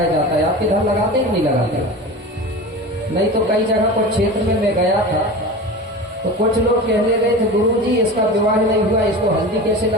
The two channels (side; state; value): both; normal; correlation 0.31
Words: जाता है। आप इधर लगाते कि नहीं लगाते? नहीं तो कई जगह पर क्षेत्र में मैं गया था तो कुछ लोग कहने गए थे गुरुजी इसका विवाह नहीं हुआ, इसको हल्दी कैसे